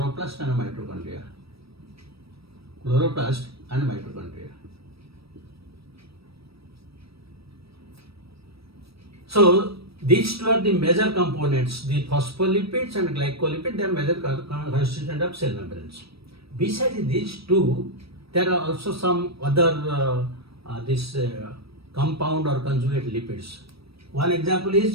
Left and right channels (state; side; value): late; left; 0.77 ms